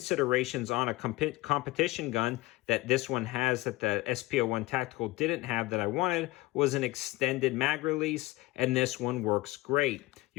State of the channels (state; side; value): quieter; right; 20.1 dB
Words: on a competition gun that this one has that the SP01 Tactical didn't have that I wanted was an extended mag release, and this one works great.